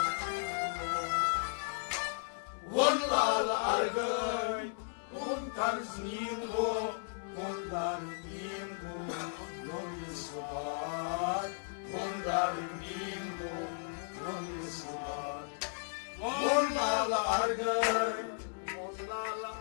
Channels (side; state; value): right; silent; digital silence